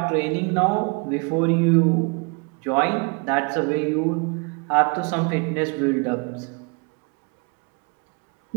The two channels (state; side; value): quieter; left; 32.8 dB